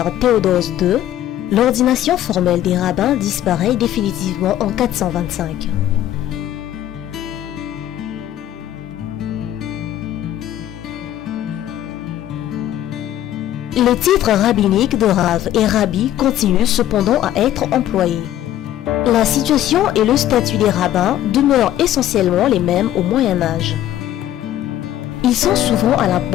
Théodose II, l'ordination formelle des rabbins disparaît définitivement en 425. Les titres rabbiniques de Rav et Rabbi continuent cependant à être employés. La situation et le statut des rabbins demeurent essentiellement les mêmes au Moyen Âge. Ils sont souvent à la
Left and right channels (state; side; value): quieter; right; 12.5 dB